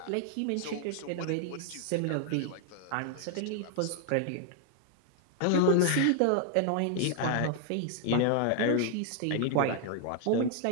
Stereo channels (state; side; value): different; both; correlation 0.00